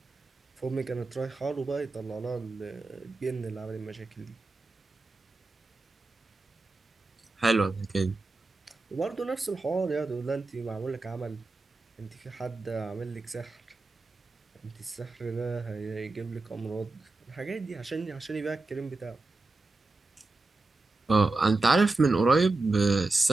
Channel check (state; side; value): quieter; left; 3.3 dB